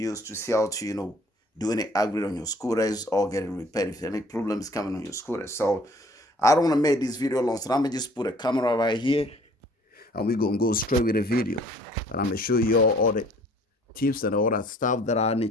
to see how to do any upgrade on your scooters or get it repaired if any problems coming on your scooter. So I don't want to make this video long, so I'm gonna just put a camera right here and we're gonna go straight with the video. And I'm gonna show you all the tips and all that stuff that I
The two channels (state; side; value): normal; both; correlation 0.55